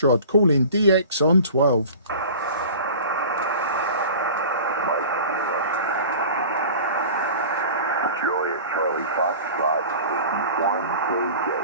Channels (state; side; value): inverted; both; correlation -0.39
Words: calling DX on 12. Juliet Charlie Foxtrot, 1KJ,